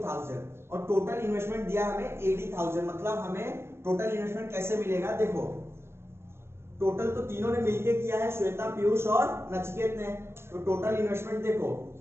और टोटल इन्वेस्टमेंट दिया हमें 80,000। मतलब हमें टोटल इन्वेस्टमेंट कैसे मिलेगा, देखो टोटल तो तीनों ने मिलके किया है, श्वेता, पीयूष और नचिकेत ने। तो टोटल इन्वेस्टमेंट देखो,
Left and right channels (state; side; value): late; left; 0.12 ms